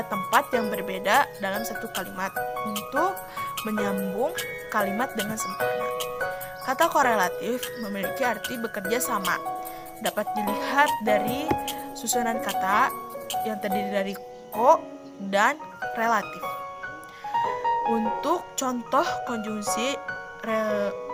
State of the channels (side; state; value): both; identical; correlation 1.00